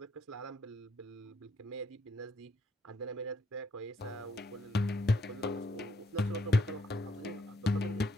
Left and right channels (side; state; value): both; normal; correlation 0.73